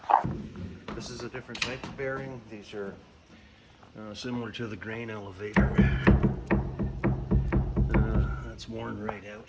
this is a different type of bearing. These are similar to the grain elevator. That's worn right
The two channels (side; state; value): both; identical; correlation 1.00